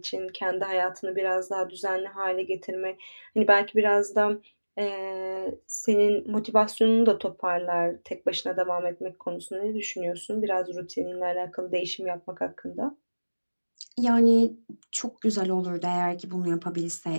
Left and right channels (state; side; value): inverted; both; correlation -1.00